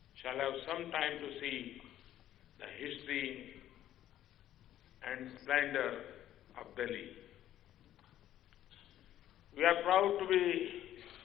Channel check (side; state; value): right; quieter; 12.3 dB